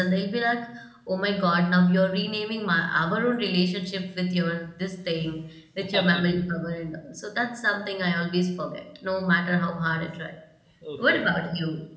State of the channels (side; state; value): both; identical; correlation 1.00